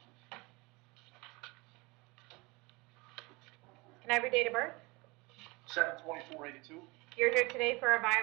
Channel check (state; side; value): quieter; left; 25.2 dB